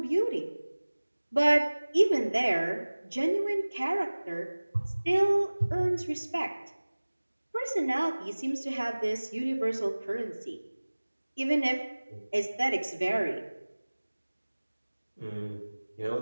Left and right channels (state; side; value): inverted; both; correlation -1.00